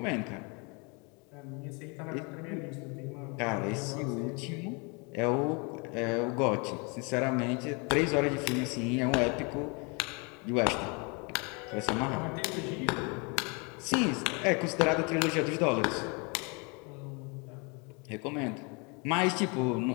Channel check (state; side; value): quieter; right; 31.7 dB